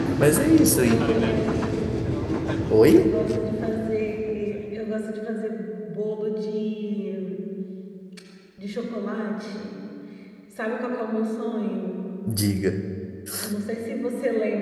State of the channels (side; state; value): both; identical; correlation 1.00